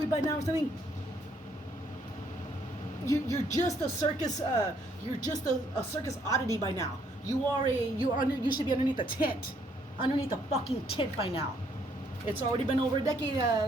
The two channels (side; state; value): both; normal; correlation 0.68